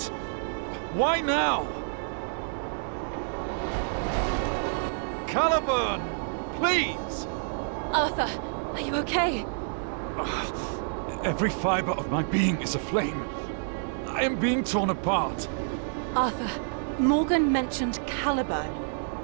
Why now? Caliburn! Please! Arthur, are you okay? Every fiber of my being is aflame. I am being torn apart. Arthur, Morgan mentioned Caliburn.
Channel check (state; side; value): silent; left; digital silence